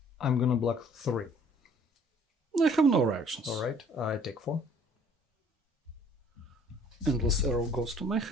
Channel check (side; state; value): both; normal; correlation 0.56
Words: I'm gonna block 3. I have no reactions. Alright, I take 4. Endless Arrow goes to my